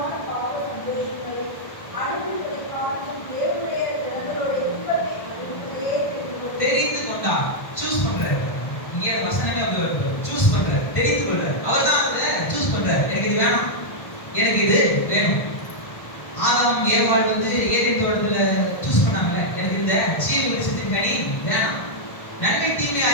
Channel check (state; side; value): late; right; 1.3 ms